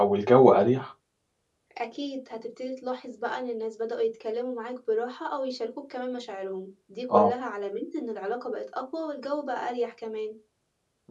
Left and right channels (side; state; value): both; identical; correlation 1.00